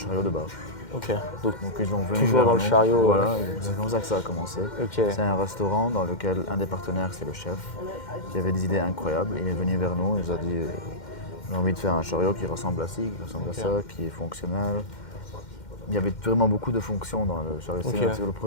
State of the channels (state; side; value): late; right; 2.1 ms